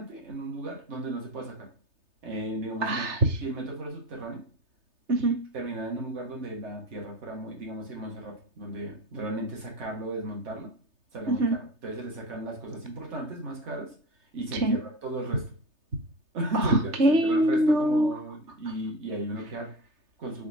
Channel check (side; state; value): left; late; 3.3 ms